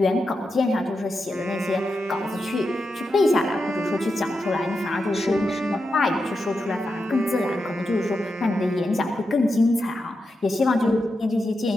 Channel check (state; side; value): normal; both; correlation 0.87